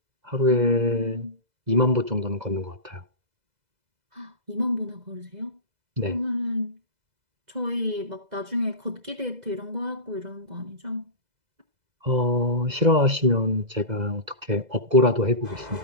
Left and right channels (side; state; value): left; late; 2.0 ms